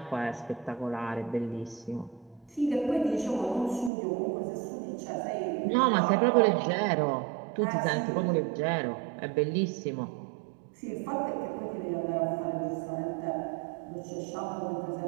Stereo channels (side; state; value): left; drops out; at 3.9 s